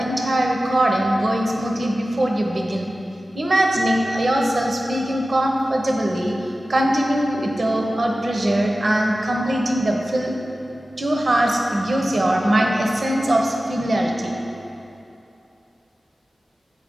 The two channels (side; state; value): both; normal; correlation 0.95